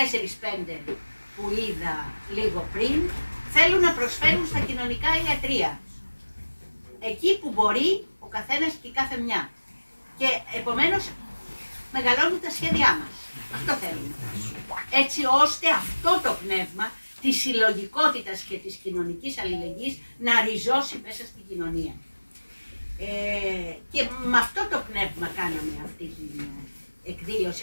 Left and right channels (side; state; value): both; inverted; correlation -1.00